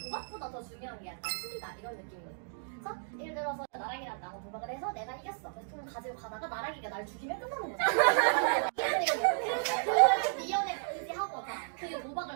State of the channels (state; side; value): silent; left; digital silence